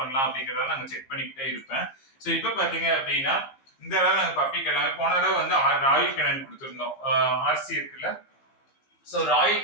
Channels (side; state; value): right; late; 15 ms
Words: அப்படிங்கறத நாங்க செக் பண்ணிக்கிட்டே இருப்பேன். ஸோ இப்போ பாத்தீங்க அப்படின்னா இந்த தடவை நாங்க பப்பிக்கு எல்லாமே போன தடவை வந்து ராயல் கெனன் கொடுத்துருந்தோம். ஆர்சி இருக்குல்ல, so Royal